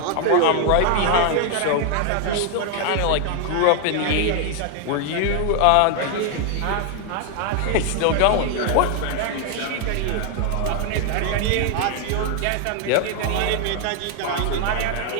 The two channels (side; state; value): both; different; correlation 0.00